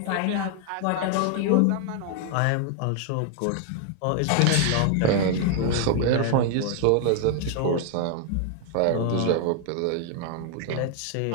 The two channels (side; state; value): both; different; correlation 0.00